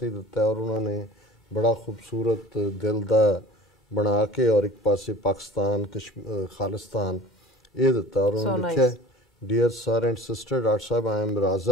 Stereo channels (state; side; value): normal; both; correlation 0.43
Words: ते दिता है और उन्होंने बड़ा खूबसूरत दिल दा बना के और एक पासे पाकिस्तान खालिस्तान ये दिता और उन्होंने लिखा dear sir and sister doctor साहब I am